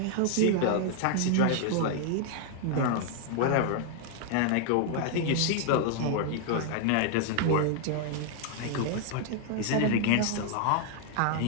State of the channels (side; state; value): both; different; correlation 0.00